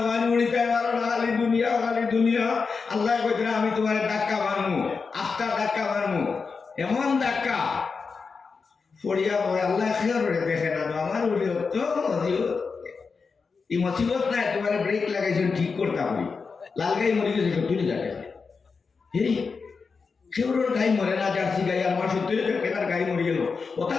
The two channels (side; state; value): right; quieter; 4.9 dB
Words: পড়িতে পারো না খালি দুনিয়া আল্লাহ কইতে আমি তোমার ধাক্কা মারমু আস্তা ধাক্কা মারমু এমন ধাক্কা পড়িয়া পড়ে আল্লাহ খেয়াল দেখে না আমার তো এই মুসিবত নাই তোমার ব্রেক লাগাইছেন ঠিক করতে পারি লাল গাই মরে গেছে সত্যি যাকে এই সেগুলোর গাই মরে না জার্সি গাই আমার সত্যি কেনার গাই মরে গেল